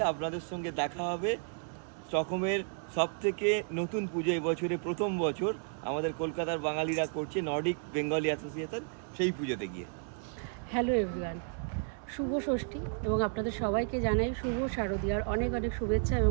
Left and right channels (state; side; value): silent; left; 56 dB below the other